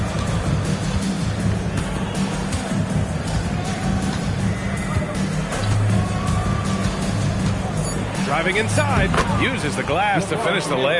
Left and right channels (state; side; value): identical; both; correlation 1.00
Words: Driving inside, uses the glass to finish the